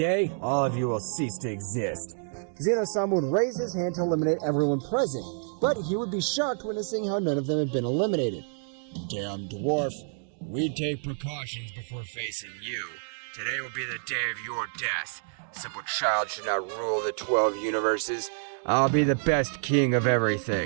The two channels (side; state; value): left; silent; 59 dB below the other